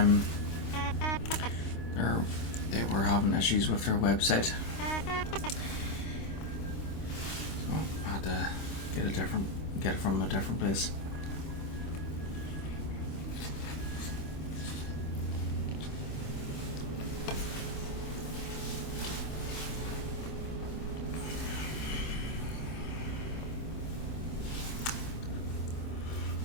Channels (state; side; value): late; right; 26 ms